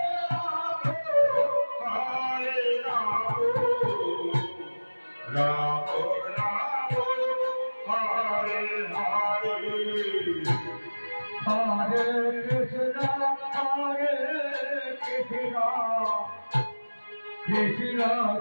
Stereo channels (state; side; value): inverted; both; correlation -1.00